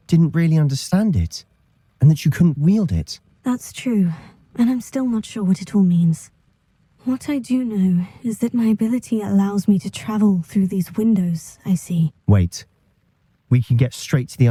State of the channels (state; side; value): identical; both; correlation 1.00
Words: didn't really understand it, and that you couldn't wield it. That's true, and I'm still not sure what it all means. What I do know is that my ability allows me to travel through these windows I see. Wait. We can get straight to the